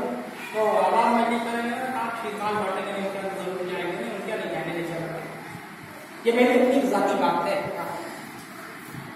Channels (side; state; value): both; identical; correlation 1.00